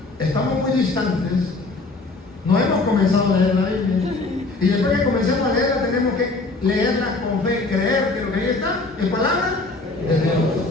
estamos muy distantes, no hemos comenzado a leer la Biblia. Y después que comencemos a leerla, tenemos que leerla con fe, creer que lo que ahí está es palabra de Dios.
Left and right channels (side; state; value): right; quieter; 3.4 dB